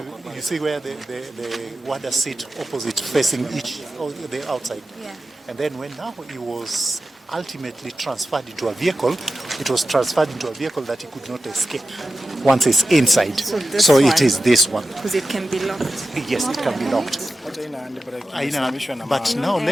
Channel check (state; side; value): normal; both; correlation 0.93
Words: you see where the warder sit opposite facing each of the outside. Yeah. And then when now he was ultimately transferred into a vehicle, it was transferred into a vehicle that he could not escape once it's inside. So it is this one. Because it can be locked. Yes, it can be locked. But now